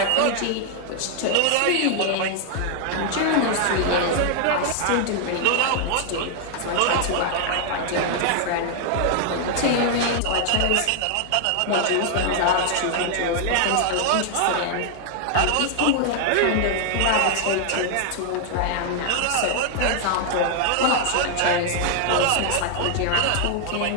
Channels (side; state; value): both; different; correlation 0.00